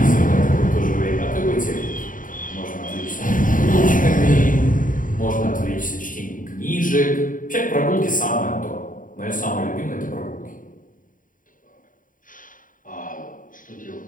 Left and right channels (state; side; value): late; right; 0.39 ms